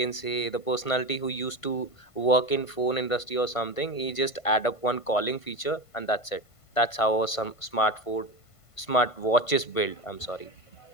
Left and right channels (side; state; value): right; late; 1.5 ms